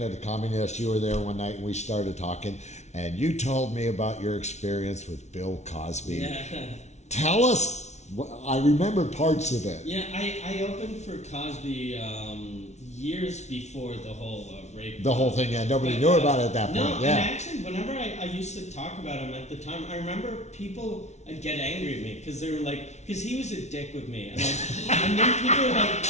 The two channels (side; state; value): right; late; 0.32 ms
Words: at the Comedy Nest, you were there one night and we started talking, and you told me about your experience with Bill Cosby. Yeah. Tell us. I remember parts of it. Yeah, I opened for Cosby years before the whole rape. The whole thing, yeah. Nobody knew about it at that point. No, yeah. and actually, whenever I used to talk about him at the time, I remember people would get angry at me because they were like, because he was a dick with me. And then people were like,